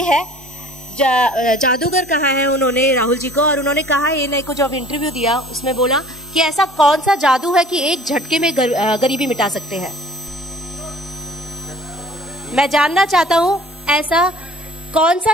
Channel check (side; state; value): both; normal; correlation 0.50